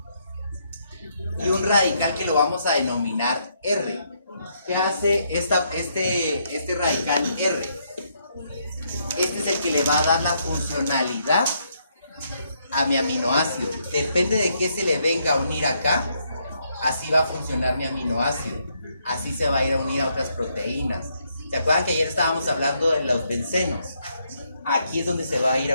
Y un radical que lo vamos a denominar R. ¿Qué hace este radical R? Este es el que le va a dar la funcionalidad a mi aminoácido. Depende de qué se le venga a unir acá, así va a funcionar mi aminoácido. Así se va a ir a unir a otras proteínas. ¿Se acuerdan que ayer estábamos hablando de los bencenos? Aquí es donde se va a ir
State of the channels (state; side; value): inverted; both; correlation -0.75